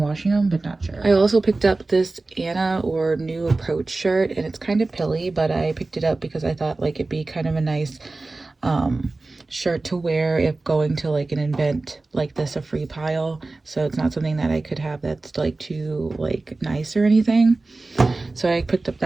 them, but not sure. I also picked up this Anna or New Approach shirt, and it's kind of pilly, but I picked it up because I thought like it'd be kind of a nice shirt to wear if going to like an event like this, a free pile. So it's not something that I could have that's like too like nice or anything. So I picked up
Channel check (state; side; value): quieter; left; 3.3 dB